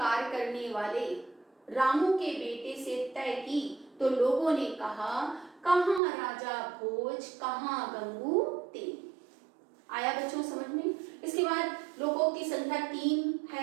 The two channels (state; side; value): drops out; left; at 6.0 s